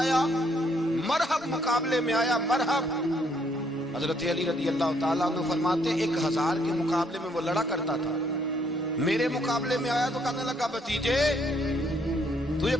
مرحب مقابلے میں آیا، مرحب۔ حضرت علی رضی اللہ تعالیٰ عنہ فرماتے 1000 کے مقابلے میں وہ لڑا کرتا تھا، میرے مقابلے میں آیا تو کہنے لگا بھتیجے تجھے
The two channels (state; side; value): normal; both; correlation 0.69